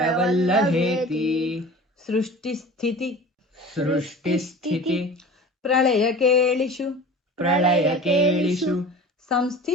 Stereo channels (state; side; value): normal; both; correlation 0.38